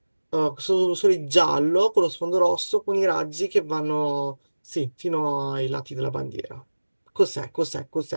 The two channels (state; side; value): inverted; both; correlation -1.00